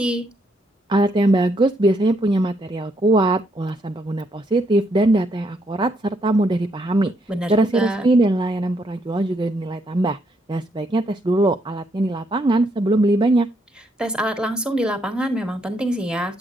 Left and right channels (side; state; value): both; normal; correlation 0.74